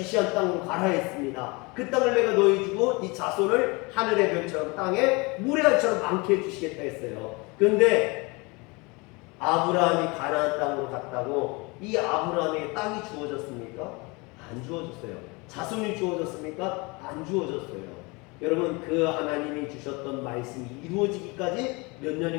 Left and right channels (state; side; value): quieter; right; 26.9 dB